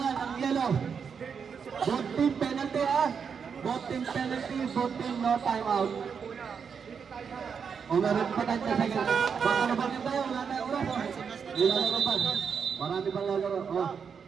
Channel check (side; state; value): left; quieter; 6.5 dB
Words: ang yellow. Both team penalty ha. Both team penalty, both team no timeout. Oh, meron pa tayo sa second. Baka na bagay tayo, wala tayong oras. Oh. Nilalaro pa. Marami pang lalaro. Oh.